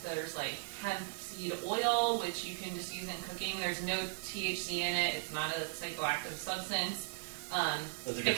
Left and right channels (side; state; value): left; silent; 53 dB below the other